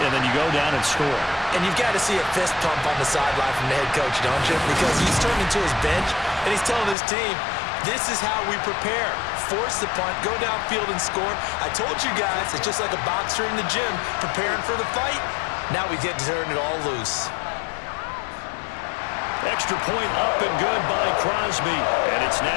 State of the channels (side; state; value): right; drops out; at 7.0 s